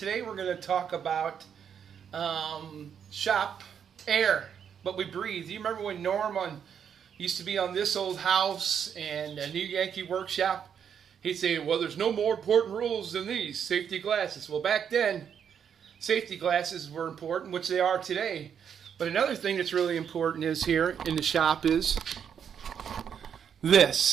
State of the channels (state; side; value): quieter; left; 7.9 dB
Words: we're going to talk about shop air, what we breathe. You remember when Norm used to be on This Old House and a New Yankee Workshop? He'd say, well, there's no more important rules than these, safety glasses. Well, back then, safety glasses were important, which they are today. But another thing that's really important is here in the shop is